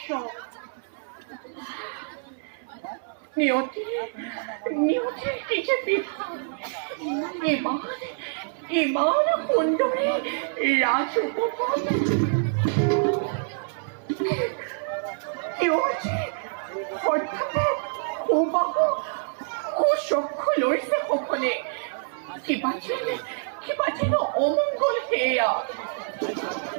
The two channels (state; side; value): silent; left; digital silence